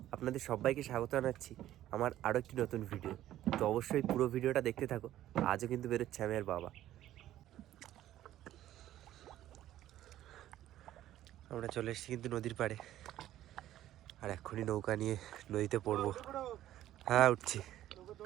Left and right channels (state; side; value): quieter; left; 13.2 dB